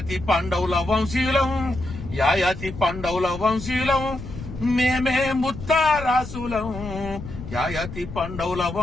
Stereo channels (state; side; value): noise; left; rumble, 11 dB below the sound